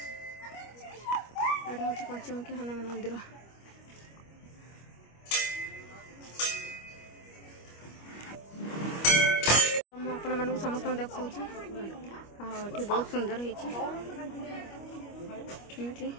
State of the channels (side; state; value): right; late; 25 ms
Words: यहाँ हूँ पंचमुखी हनुमान मंदिर। आपण मानक समस्त देखा बहुत सुंदर है।